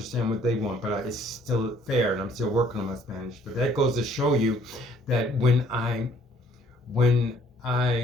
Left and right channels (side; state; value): both; normal; correlation 0.60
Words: what they want, but it's still fair, and I'm still working on my Spanish. But that goes to show you that when I